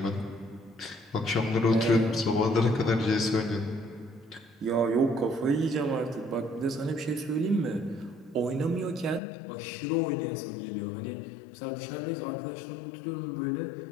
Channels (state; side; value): drops out; right; at 9.2 s